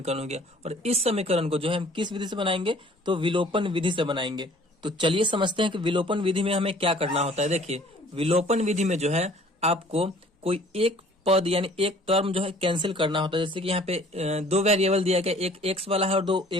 हो गया। और इस समीकरण को जो है हम किस विधि से बनाएंगे, तो विलोपन विधि से बनाएंगे। तो चलिए समझते हैं कि विलोपन विधि में हमें क्या करना होता है। देखिए, विलोपन विधि में जो है आपको कोई एक पद यानी एक टर्म जो है कैंसिल करना होता है। जैसे कि यहाँ पे दो वेरिएबल दिया गया, एक x वाला है और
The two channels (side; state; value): both; normal; correlation 0.53